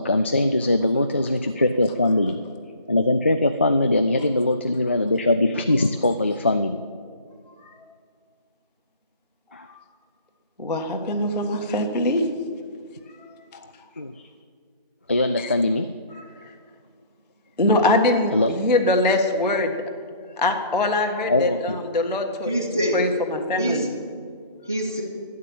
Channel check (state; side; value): inverted; both; correlation -0.49